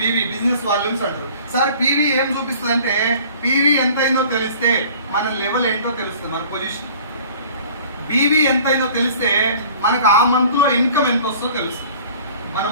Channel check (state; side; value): inverted; both; correlation -0.48